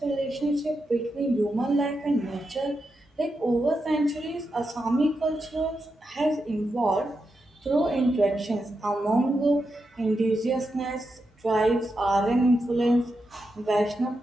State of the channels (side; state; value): both; normal; correlation 0.87